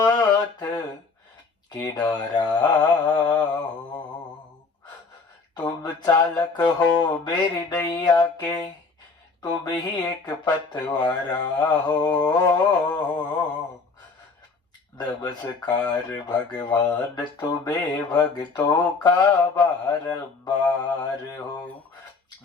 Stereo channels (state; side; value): quieter; right; 4.4 dB